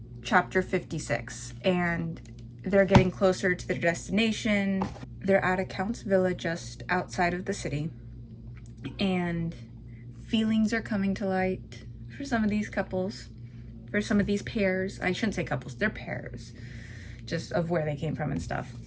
chapter 56. And they're getting closer to their destination. They're at a Count's villa just outside of the city. And feelings are coming to light for some of these couples, for some of these pairs. I shouldn't say couples, they're pairs, just of where they came from and stuff.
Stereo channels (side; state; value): both; identical; correlation 1.00